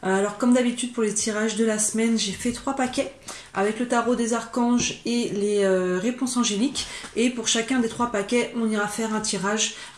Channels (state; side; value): identical; both; correlation 1.00